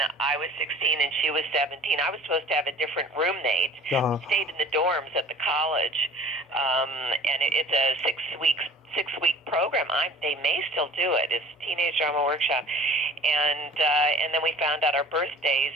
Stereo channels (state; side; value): normal; both; correlation 0.46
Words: I was 16 and she was 17. I was supposed to have a different roommate. Uh-huh. Stayed in the dorms at the college, and it's a six-week program. They may still do it. It's Teenage Drama Workshop, and then we found out our birthdays